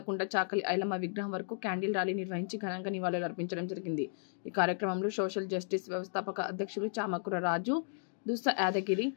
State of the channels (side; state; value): right; silent; digital silence